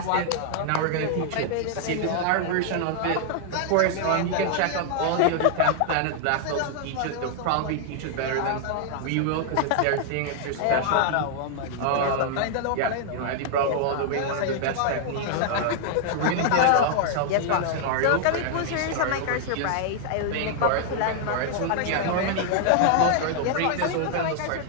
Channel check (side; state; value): both; different; correlation 0.00